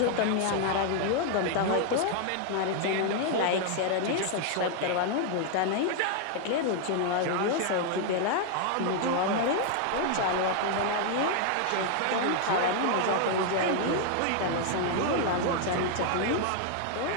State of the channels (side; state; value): both; different; correlation 0.00